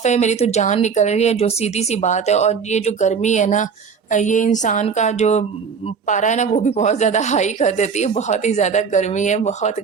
है, मेरी तो जान निकल रही है, जो सीधी-सी बात है। और ये जो गर्मी है ना, ये इंसान का जो पारा है ना, वो भी बहुत ज़्यादा हाई कर देती है। बहुत ही ज़्यादा गर्मी है, बहुत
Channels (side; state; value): left; quieter; 6.0 dB